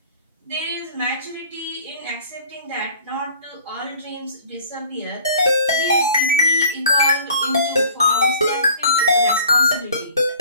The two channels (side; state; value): both; inverted; correlation -0.50